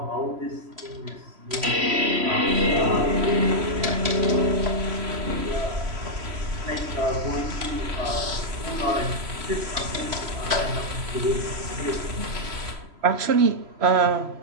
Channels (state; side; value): late; left; 3.0 ms